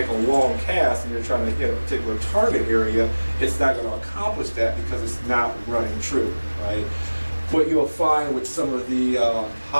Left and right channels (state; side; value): inverted; both; correlation -1.00